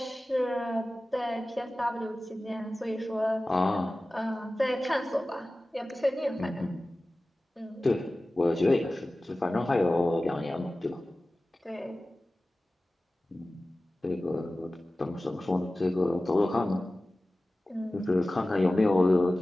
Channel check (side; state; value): both; normal; correlation 0.96